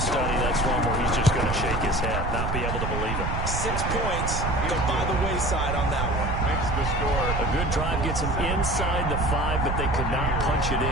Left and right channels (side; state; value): right; noise; rumble, 2 dB below the sound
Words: that's one where he's just going to shake his head, not be able to believe it. 6 points go by the wayside on that one. Makes the score. A good drive gets him inside the 5, but they could not punch it